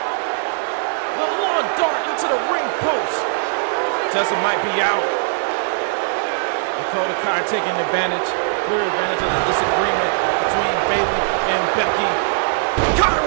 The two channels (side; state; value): left; silent; digital silence